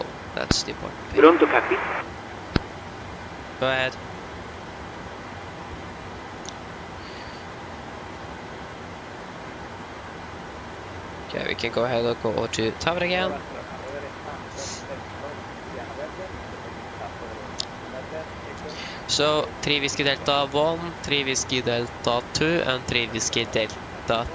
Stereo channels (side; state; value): both; identical; correlation 1.00